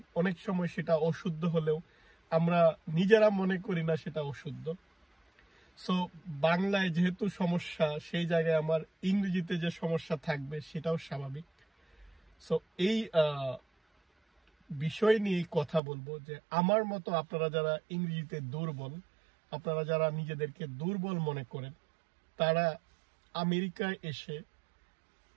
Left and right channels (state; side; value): drops out; left; at 15.8 s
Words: অনেক সময় সেটা অশুদ্ধ হলেও আমরা নিজেরা মনে করি না সেটা অশুদ্ধ। সো বাংলায় যেহেতু সমস্যা, সেই জায়গায় আমার ইংরেজিতে যে সমস্যা থাকবে সেটাও স্বাভাবিক। সো এই বিষয় নিয়ে কথা বলবো যে আমার মতো আপনারা যারা ইংরেজিতে দুর্বল, আপনারা যারা নিজেদেরকে দুর্বল মনে করেন, তারা আমেরিকায় এসে